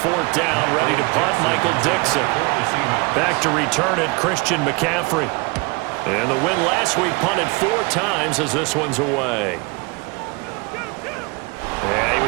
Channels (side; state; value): left; quieter; 27.9 dB